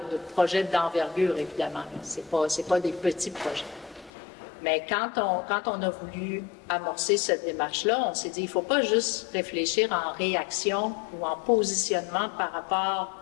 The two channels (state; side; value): drops out; right; at 4.1 s